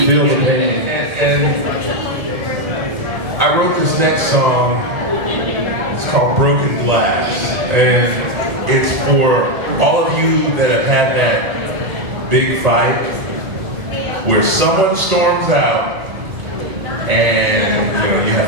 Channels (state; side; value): late; left; 1.8 ms